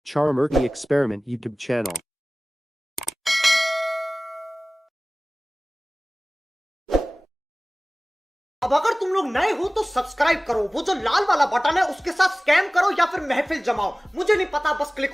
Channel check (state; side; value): normal; both; correlation 0.98